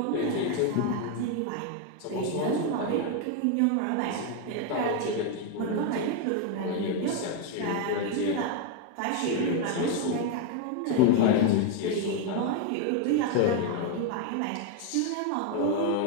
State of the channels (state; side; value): different; both; correlation 0.01